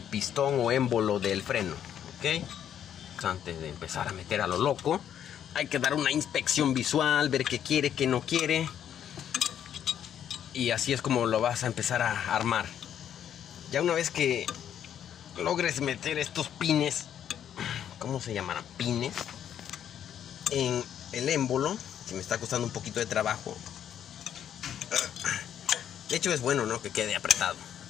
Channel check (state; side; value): quieter; right; 9.7 dB